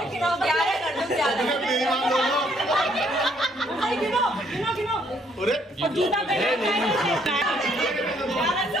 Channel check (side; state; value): both; normal; correlation 0.67